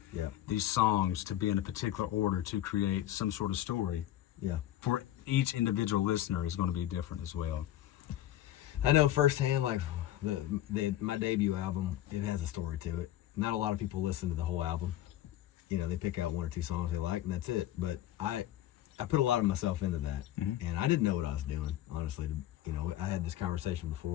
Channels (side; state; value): right; quieter; 13.2 dB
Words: these songs to be in a particular order to create some sort of story. Yeah. For each individual listener is going to be different as well. I know firsthand, like my debut album, it has a story to it. Not a lot of people listen to the whole album. They pick out one or two songs they like, and that's it. But I put a lot of myself into that, and I didn't know what I was doing, honestly. I had this conversation